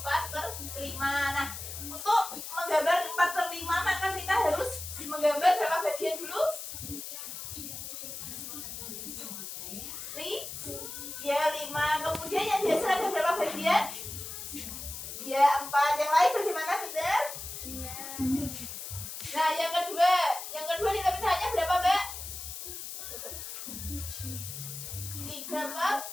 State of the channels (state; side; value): noise; left; hiss, 8 dB below the sound